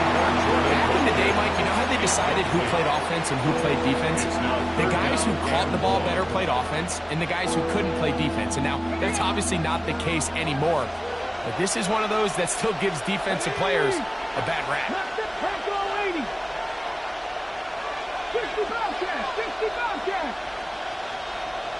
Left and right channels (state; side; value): identical; both; correlation 1.00